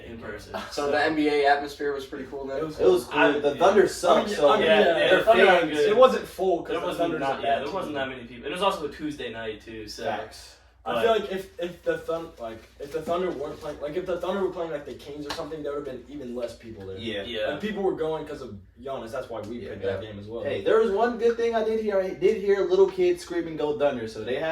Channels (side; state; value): both; identical; correlation 1.00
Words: in person. So the NBA atmosphere was pretty cool then? It was cool. The Thunder sucked, so the their Thunder fans, good. it wasn't full because There the wasn't Thunder's a bad there wasn't that many people. It was also a Tuesday night too, so. Facts. But I feel like if the Thunder weren't playing, like if the Thunder were playing like the Kings or something, there would have been even less people there. Yeah. And people were going because of Giannis. That's why we picked that game as well. Hey, There was one good thing I did hear. I did hear little kids screaming "Go Thunder!" So they